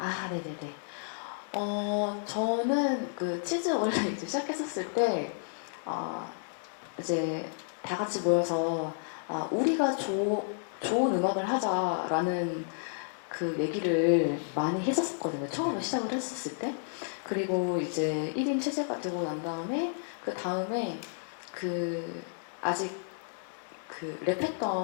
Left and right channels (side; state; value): right; silent; digital silence